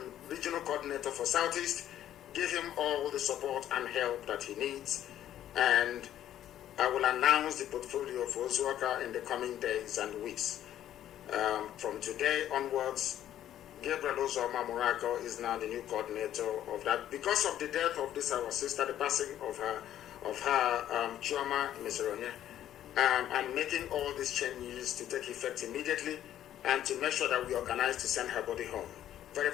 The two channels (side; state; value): right; quieter; 11.6 dB